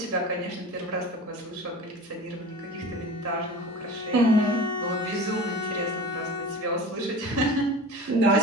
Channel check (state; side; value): normal; both; correlation 0.35